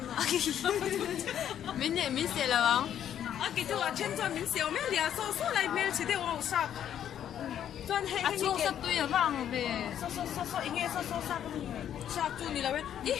Mình sẽ là bằng. cái tụi trên cho mình xíu mấy liền số lại mình chỉ để vào sạp. Số sắp tôi ở vàng về số ý nghĩa số sắp sắp chú đi là vậy đi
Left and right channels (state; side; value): quieter; right; 10.0 dB